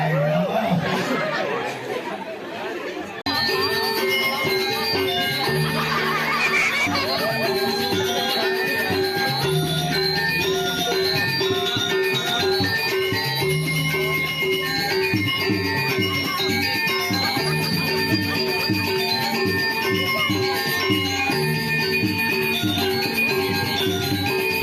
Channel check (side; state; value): both; identical; correlation 1.00